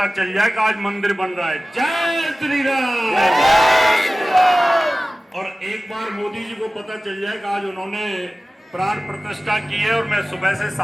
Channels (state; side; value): normal; both; correlation 0.97